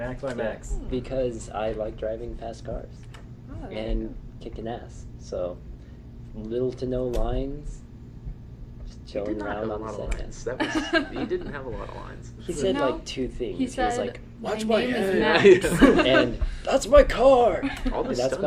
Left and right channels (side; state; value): both; identical; correlation 1.00